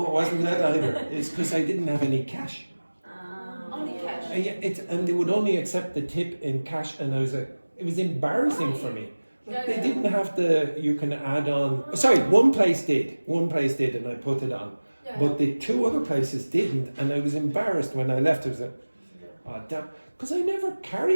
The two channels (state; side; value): inverted; both; correlation -1.00